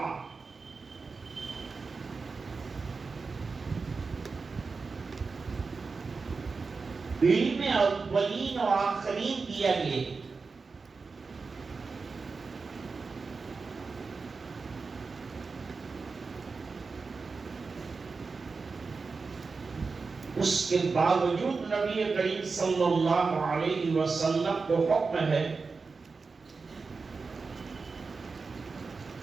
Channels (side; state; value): left; quieter; 4.5 dB